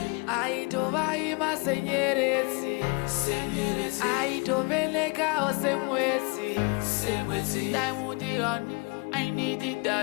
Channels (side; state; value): right; quieter; 30.9 dB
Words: aito vaima senyeredzi, aito velekawo semwedzi. Diamond on, I need it,